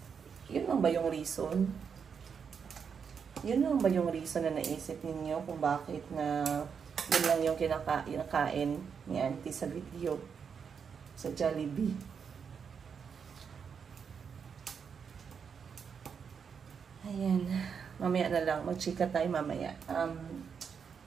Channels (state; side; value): quieter; left; 6.6 dB